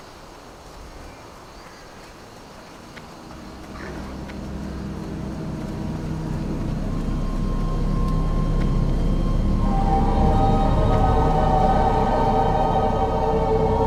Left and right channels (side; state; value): both; identical; correlation 1.00